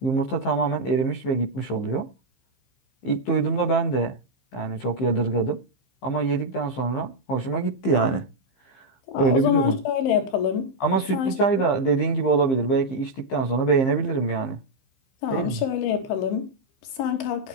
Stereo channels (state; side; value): late; right; 15 ms